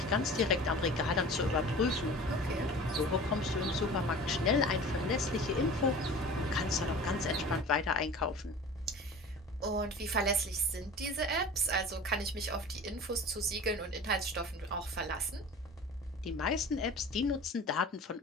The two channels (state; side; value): normal; both; correlation 0.39